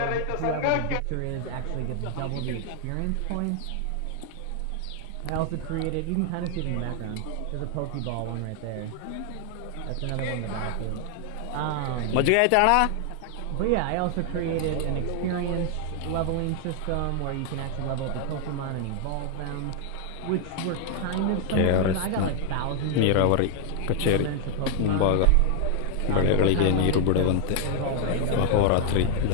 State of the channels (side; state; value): both; different; correlation 0.00